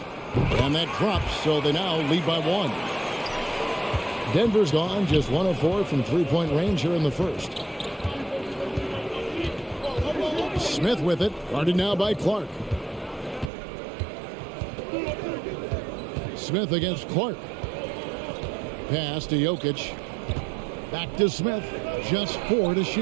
And that drops, so they now lead by 1. Denver's gone just 1 of 4 from 3-point range here in the first. Smith with it, guarded now by Clark. Smith against Clark. Pass to Jokic. Back to Smith. Just 4 to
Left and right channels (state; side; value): drops out; left; at 13.5 s